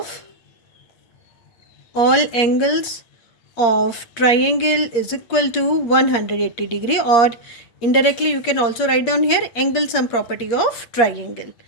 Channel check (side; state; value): right; late; 8.5 ms